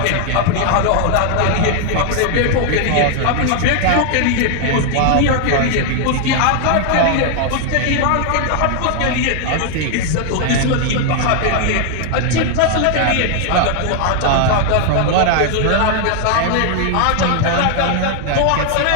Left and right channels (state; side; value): different; both; correlation 0.00